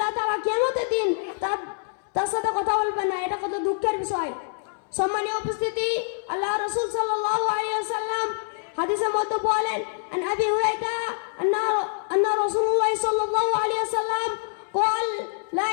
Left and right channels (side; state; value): right; silent; 61 dB below the other